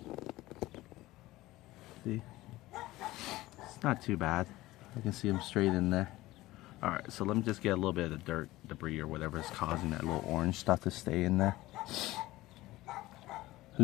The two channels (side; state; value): right; quieter; 17.8 dB